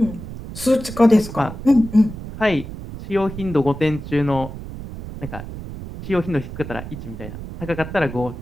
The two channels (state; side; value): noise; right; rumble, 10 dB below the sound